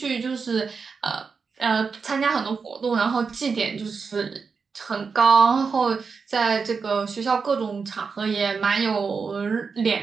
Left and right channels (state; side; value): quieter; left; 5.2 dB